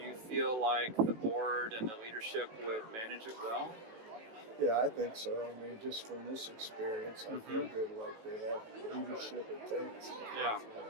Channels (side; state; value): left; late; 18 ms